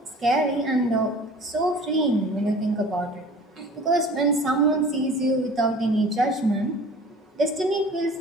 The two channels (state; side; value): normal; both; correlation 0.44